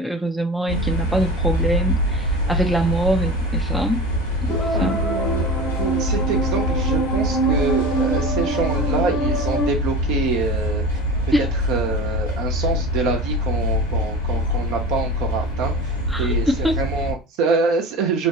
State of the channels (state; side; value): normal; both; correlation 0.33